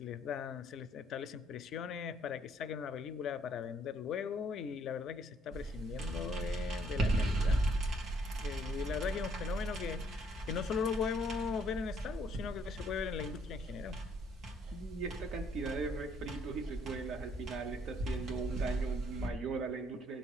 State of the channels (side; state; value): both; normal; correlation 0.66